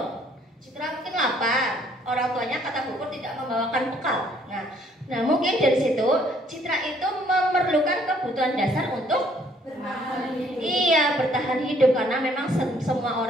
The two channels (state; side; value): normal; both; correlation 0.63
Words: Citra mungkin lapar, orang tuanya kata Bu Pur tidak membawakan bekal. Nah mungkin dari situ Citra itu memerlukan kebutuhan dasar untuk bertahan hidup karena memang semua